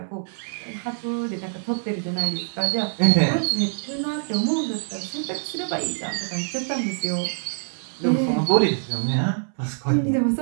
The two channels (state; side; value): silent; left; 62 dB below the other